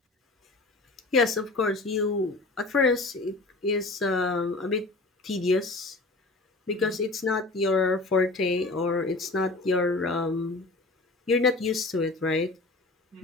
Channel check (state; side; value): quieter; right; 3.2 dB